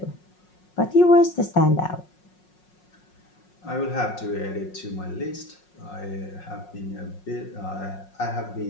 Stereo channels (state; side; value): late; right; 5.5 ms